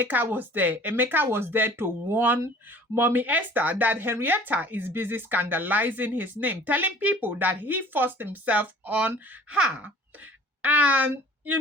was there? Emeka was there to warn Mommy Esther that Henrietta is busy scandalizing his name, telling people that he forced himself on her. And,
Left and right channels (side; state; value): both; normal; correlation 0.47